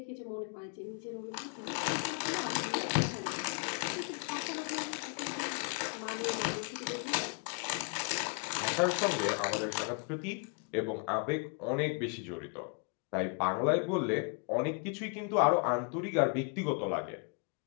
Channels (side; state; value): right; quieter; 39.0 dB